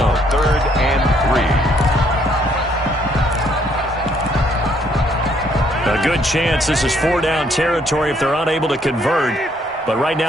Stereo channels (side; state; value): both; normal; correlation 0.68